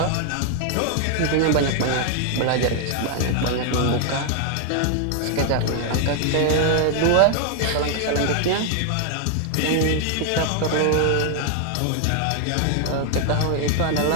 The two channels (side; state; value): both; different; correlation 0.00